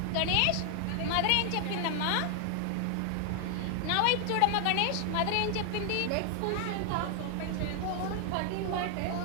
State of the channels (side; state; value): both; different; correlation 0.00